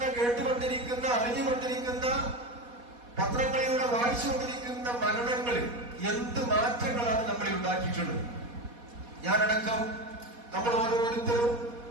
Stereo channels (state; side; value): late; left; 4.2 ms